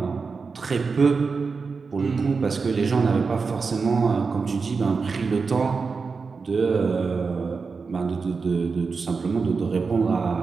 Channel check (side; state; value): left; quieter; 4.8 dB